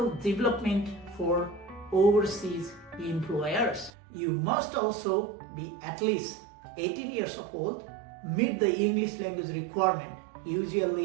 development for overseas employers. You must also be at least 18 years old, meet the English language requirement,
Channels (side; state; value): left; drops out; at 3.9 s